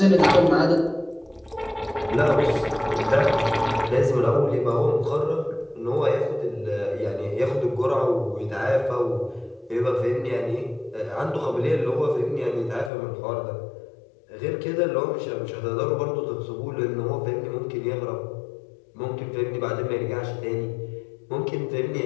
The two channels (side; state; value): right; drops out; at 12.9 s